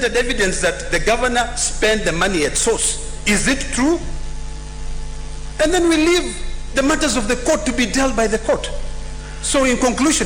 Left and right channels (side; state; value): both; identical; correlation 1.00